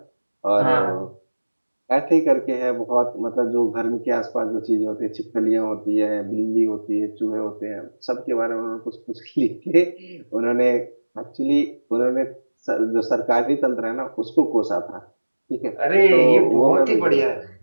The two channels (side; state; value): both; inverted; correlation -1.00